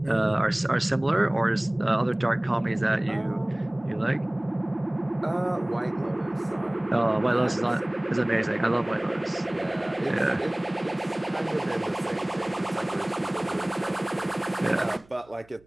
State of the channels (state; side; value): noise; right; hum, 29 dB below the sound